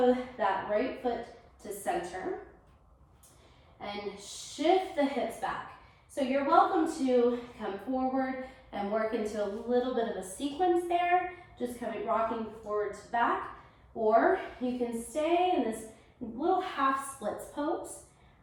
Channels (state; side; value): identical; both; correlation 1.00